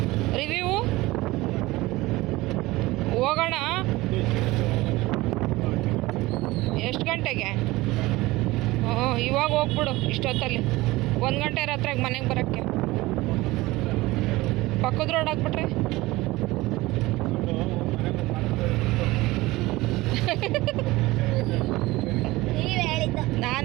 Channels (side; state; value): left; quieter; 19.7 dB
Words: ರಿವ್ಯೂ ಹೋಗೋಣ. ಎಷ್ಟು ಗಂಟೆಗೆ? ಇವಾಗ ಹೋಗ್ಬಿಡು ಇಷ್ಟೊತ್ತಲ್ಲಿ 1 ಗಂಟೆ ರಾತ್ರಿಗೆ ಮನೆಗೆ ಬರೋಕ್ಕೆ. ಪಕ್ಕದ ರೋಡ್ ಹಾಕ್ಬಿಟ್ರೆ